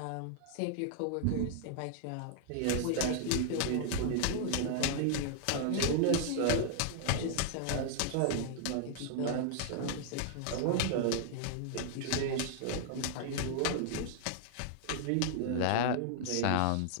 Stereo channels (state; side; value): different; both; correlation -0.01